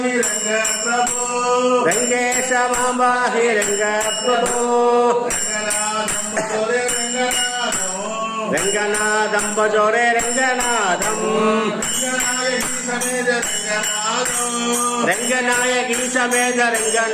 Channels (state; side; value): identical; both; correlation 1.00